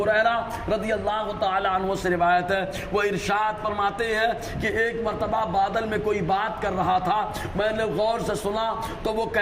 ہریرہ رضی اللہ تعالیٰ عنہ سے روایت ہے، وہ ارشاد فرماتے ہیں کہ ایک مرتبہ بادل میں کوئی بات کر رہا تھا، میں نے غور سے سنا تو وہ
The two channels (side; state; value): both; identical; correlation 1.00